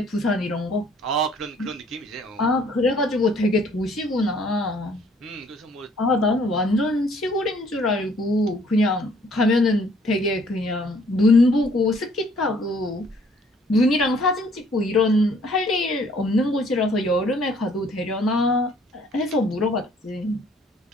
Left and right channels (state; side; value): normal; both; correlation 0.60